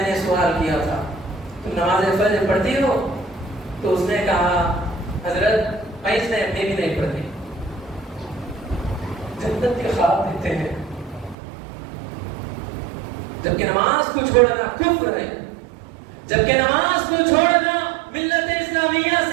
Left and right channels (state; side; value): drops out; left; at 11.4 s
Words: نے سوال کیا تھا تم نماز فجر پڑھتی ہو؟ تو اس نے کہا حضرت میں بھی نہیں پڑھتی۔ جنت کے خواب دیتے ہیں جبکہ نماز کو چھوڑنا کفر ہے، جبکہ نماز کو چھوڑنا ملت اسلامیہ